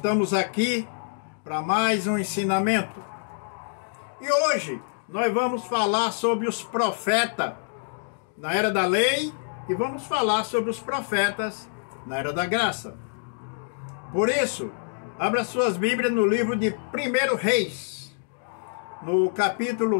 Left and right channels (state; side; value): silent; right; digital silence